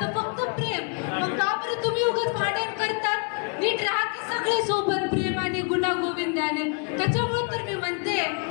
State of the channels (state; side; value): quieter; right; 38.8 dB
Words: फक्त प्रेम. मग का बरं तुम्ही उगाच भांडण करतात? नीट राहा की सगळे सोबत प्रेम आणि गुणा गोविंदाने. त्याच्यामुळे तर मी म्हणते